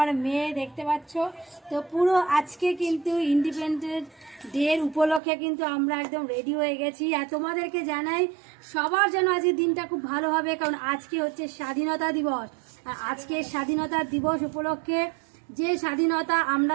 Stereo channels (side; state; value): left; drops out; at 5.2 s